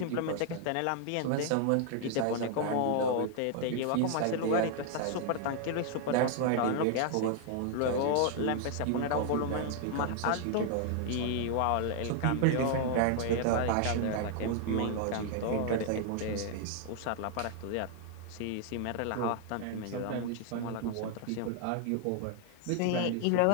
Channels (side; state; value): both; different; correlation 0.00